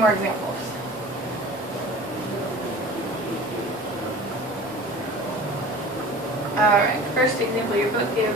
examples. Alright, first example your book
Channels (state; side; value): normal; both; correlation 0.40